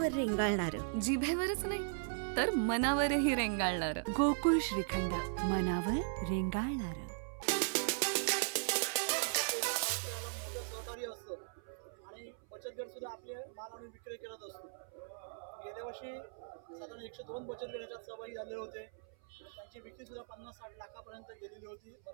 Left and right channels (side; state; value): left; silent; 52 dB below the other